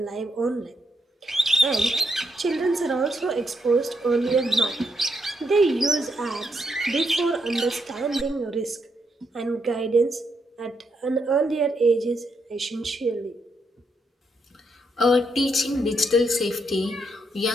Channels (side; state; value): both; normal; correlation 0.79